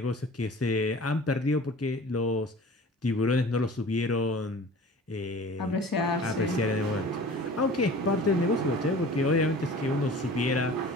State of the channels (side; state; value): both; normal; correlation 0.42